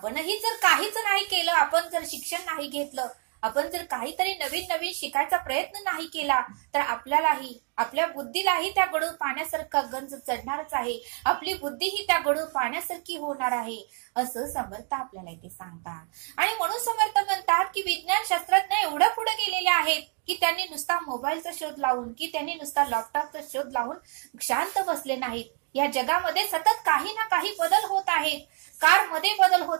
जर काहीच नाही केलं, आपण जर शिक्षण नाही घेतलं, आपण जर काहीतरी नवीन शिकायचा प्रयत्न नाही केला तर आपल्यालाही, आपल्या बुद्धीलाही त्या गडूळ पाण्यासारखा गंज चढणारच आहे. आपली बुद्धी ही त्या गडूळ पाण्यासारखी होणार आहे असं समर्थ आपल्याला इथे सांगतात. आणि म्हणून समर्थ म्हणतात की विज्ञान शास्त्रज्ञ एवढं पुढे गेलेले आहेत की त्यांनी नुसता मोबाईलचा शोध लावून, की त्यांनी नुसता लॅपटॉपचा शोध लावून शांत बसले नाहीत. या जगामध्ये सतत काही ना काही बदल होत आहेत. कार मध्ये बदल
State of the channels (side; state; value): left; quieter; 36.3 dB